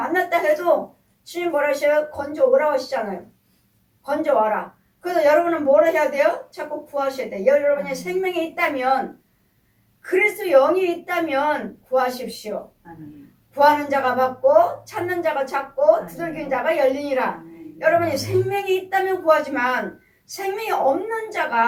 해도 주님 뭐라 하셔요? 건져오라고 하시잖아요. 건져와라. 그래서 여러분은 뭐라 해야 돼요? 자꾸 구하셔야 돼요. 여러분이 생명이 있다면, 그리스도 영이 있다면 구하십시오. 구하는 자가 받고 찾는 자가 찾고 두들기는 자가 열리니라. 여러분이 생명이 있다면 구하지만 생명이 없는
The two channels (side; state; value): both; identical; correlation 1.00